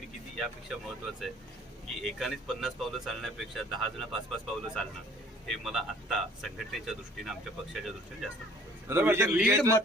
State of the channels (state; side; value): normal; both; correlation 0.54